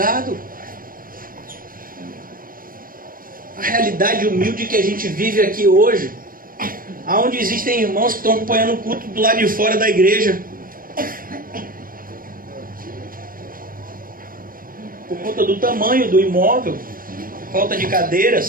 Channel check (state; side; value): late; left; 0.41 ms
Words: A realidade humilde que a gente vive aqui hoje, aonde existem irmãos que estão acompanhando o culto do lado de fora da igreja, por conta do tamanho do imóvel, falta de cadeiras,